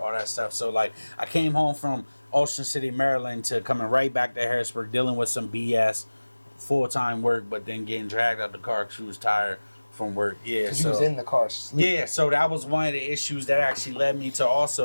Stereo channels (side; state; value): both; inverted; correlation -1.00